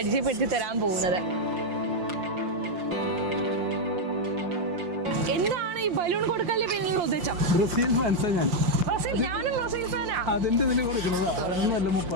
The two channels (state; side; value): late; left; 5.7 ms